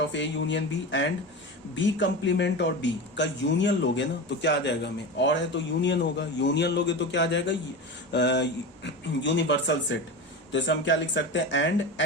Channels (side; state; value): both; normal; correlation 0.26